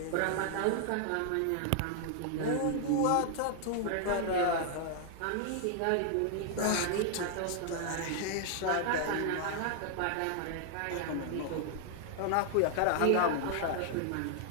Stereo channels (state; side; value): different; both; correlation 0.00